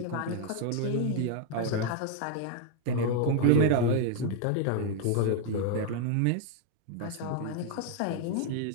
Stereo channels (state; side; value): different; both; correlation 0.00